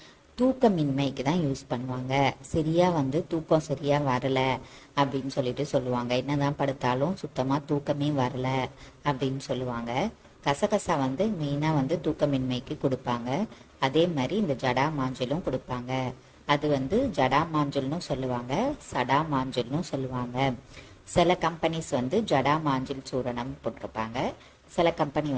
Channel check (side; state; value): both; identical; correlation 1.00